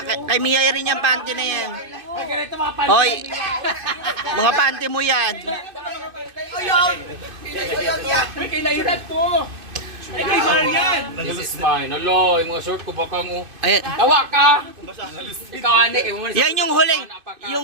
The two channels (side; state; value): left; late; 2.5 ms